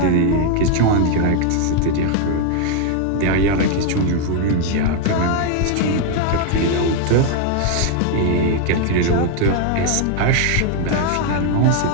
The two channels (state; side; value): different; both; correlation 0.00